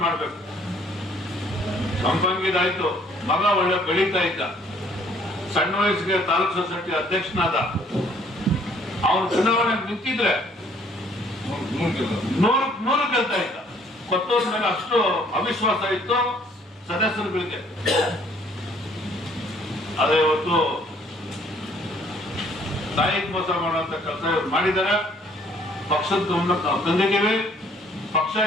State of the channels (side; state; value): both; normal; correlation 0.61